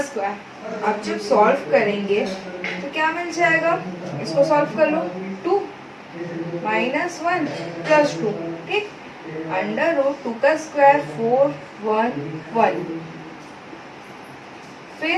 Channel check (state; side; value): identical; both; correlation 1.00